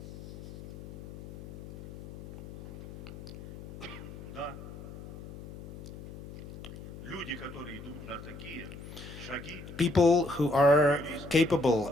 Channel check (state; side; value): noise; left; hum, 12 dB below the sound